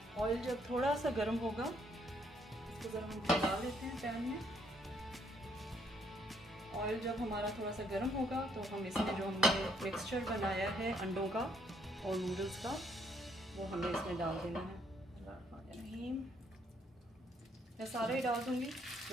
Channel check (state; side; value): normal; both; correlation 0.69